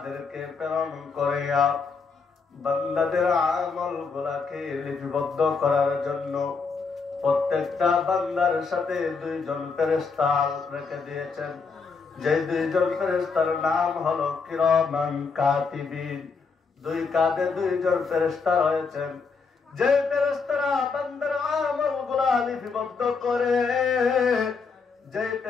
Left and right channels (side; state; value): right; quieter; 4.9 dB